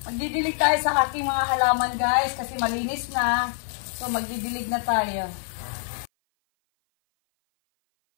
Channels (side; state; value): right; silent; 56 dB below the other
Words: Magdidilig tayo sa aking mga halaman guys kasi malinis na. So magdidilig na tayo.